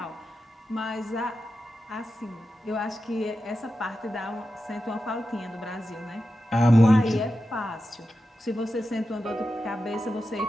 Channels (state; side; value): normal; both; correlation 0.91